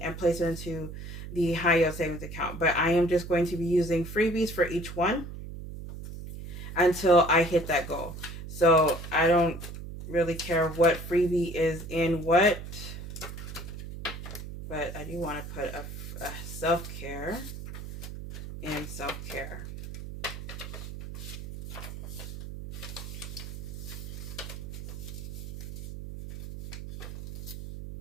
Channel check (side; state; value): right; noise; hum, 9 dB below the sound